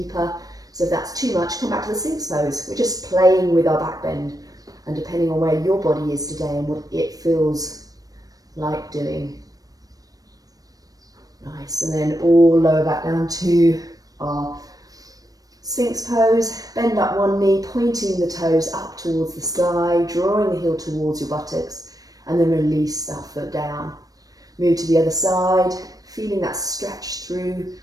So if that's too much, come back to the sphinx pose. We're just playing with our back bend, and depending on where your body is today and what it feels like doing. Nice, and then all lower back down to our sphinx pose. Bend up one knee, pointing the toes up towards the sky, drawing the heel towards your buttocks, and then release that foot down. Move to the other side, feeling that stretch through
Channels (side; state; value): left; late; 0.18 ms